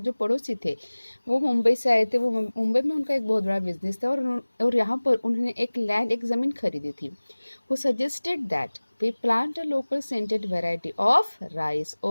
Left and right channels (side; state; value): both; inverted; correlation -1.00